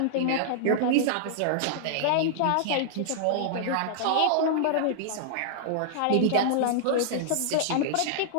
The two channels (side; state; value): both; different; correlation -0.01